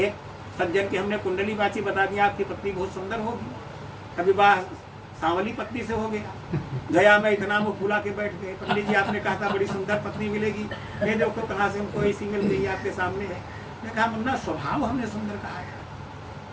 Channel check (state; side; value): identical; both; correlation 1.00